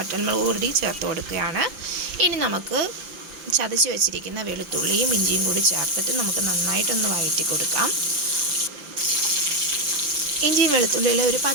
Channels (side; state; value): left; late; 5.8 ms